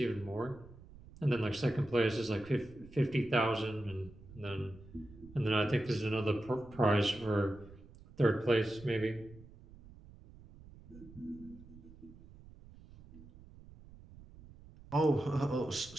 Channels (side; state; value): right; noise; rumble, 20 dB below the sound